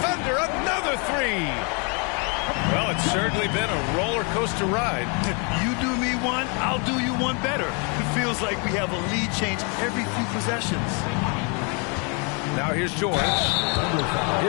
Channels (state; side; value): quieter; right; 34.4 dB